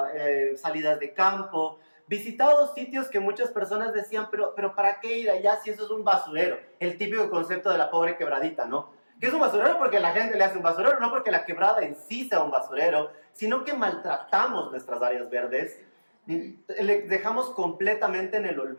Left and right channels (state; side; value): inverted; both; correlation -1.00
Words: salidas de campo, visitado sitios que muchas personas decían, pero ¿para qué ir allá si eso es un basurero? El típico concepto de la pobre quebradita, ¿no? Que es un basurero porque la gente le hace un basurero, no porque la quebrada en sí sea un basurero, sino que maltratamos nuestras áreas verdes, le dejamos completamente en el